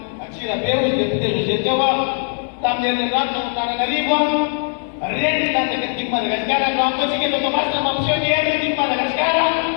Atsirabe hoy député José teo tamin'ny rato Antananarivo reny tanjaka tiako Madagasikara no ampatsika eto Tomasina mampiseho ny hery tiako Madagasikara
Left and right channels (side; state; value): right; silent; 66 dB below the other